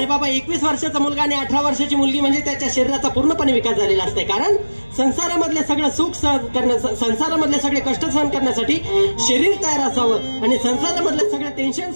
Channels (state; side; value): inverted; both; correlation -1.00